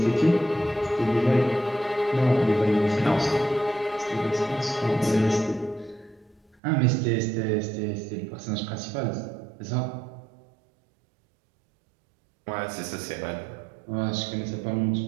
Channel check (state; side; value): drops out; left; at 6.6 s